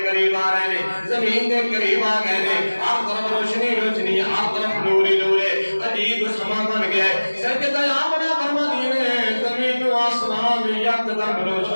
قریب آ رہے نے زمین دے قریب آ گئے نے ہر طرف روشنی روشنی ہر طرف نوری نورے عجیب سما بن گیا ہے سیدنا آمنہ فرماتی ہے زمین و آسمان یکدم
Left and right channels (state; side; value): inverted; both; correlation -1.00